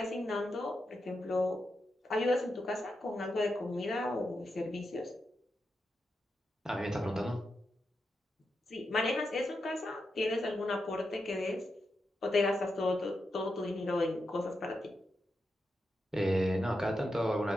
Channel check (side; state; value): both; normal; correlation 0.87